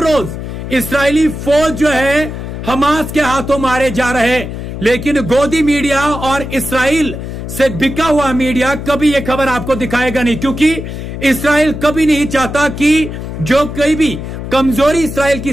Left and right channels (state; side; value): noise; left; hum, 7 dB below the sound